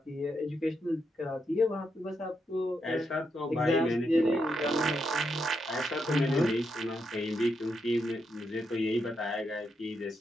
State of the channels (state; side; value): normal; both; correlation 0.82